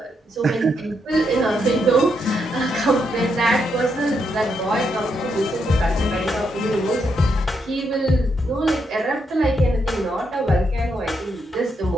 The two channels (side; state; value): both; normal; correlation 0.79